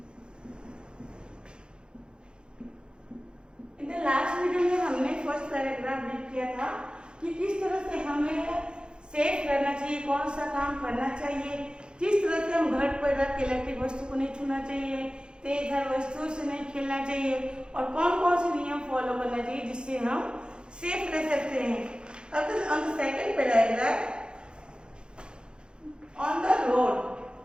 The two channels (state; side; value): late; left; 0.050 ms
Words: In the last video में हमने first paragraph read किया था कि किस तरह से हमें safe रहना चाहिए, कौन सा काम करना चाहिए, किस तरह से हम घर पर रख के इलेक्ट्रिक वस्तु को नहीं छूना चाहिए, तेज धार वस्तुओं से नहीं खेलना चाहिए और कौन कौन से नियम फॉलो करना चाहिए जिससे हम सेफ रह सकते हैं. अब on the second paragraph on the road.